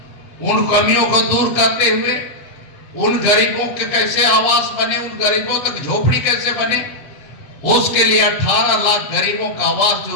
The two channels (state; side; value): late; right; 7.4 ms